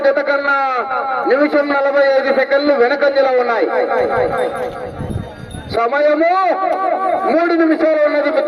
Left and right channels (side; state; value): both; identical; correlation 1.00